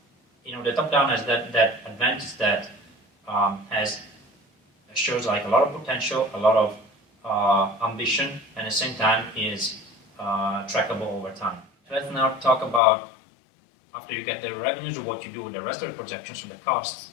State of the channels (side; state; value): right; drops out; at 12.8 s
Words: the top-down has that advantage that shows like a lot of potential, a lot of ambition, and at the same time is trackable over time. Let's now talk about, after you get the revenues, what you do with the rest of the projections and the costs.